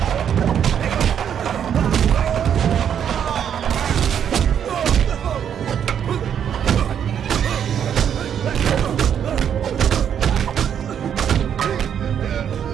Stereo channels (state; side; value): quieter; left; 8.7 dB